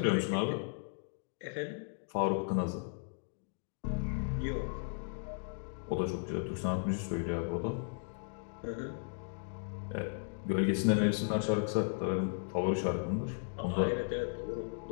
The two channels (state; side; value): silent; right; digital silence